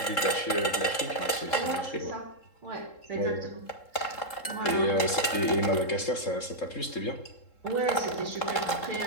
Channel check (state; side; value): late; right; 3.7 ms